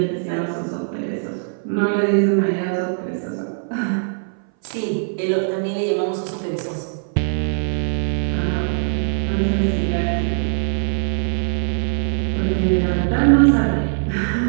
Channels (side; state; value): left; silent; 59 dB below the other